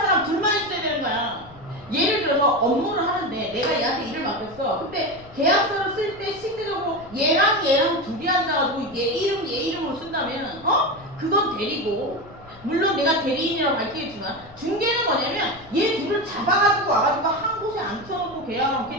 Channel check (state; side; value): noise; left; rumble, 22 dB below the sound